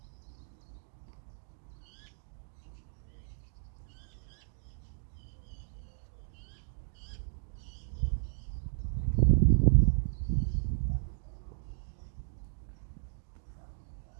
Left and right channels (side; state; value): left; silent; digital silence